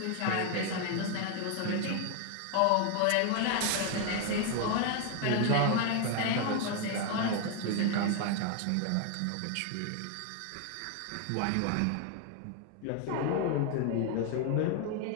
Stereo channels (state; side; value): different; both; correlation 0.01